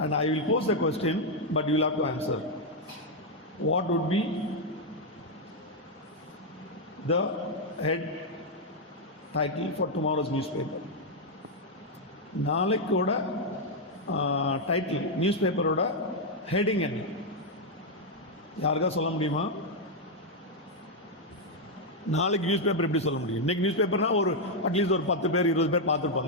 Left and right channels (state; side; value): normal; both; correlation 0.00